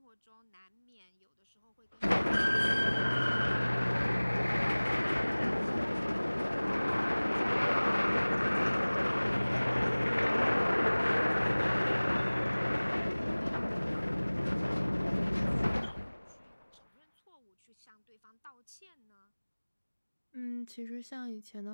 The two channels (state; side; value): inverted; both; correlation -1.00